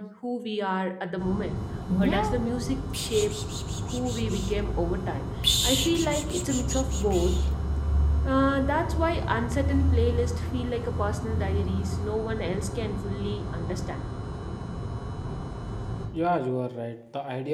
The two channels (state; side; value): identical; both; correlation 1.00